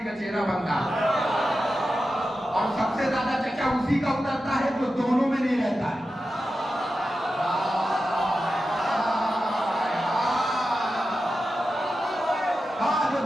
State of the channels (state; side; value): normal; both; correlation 0.91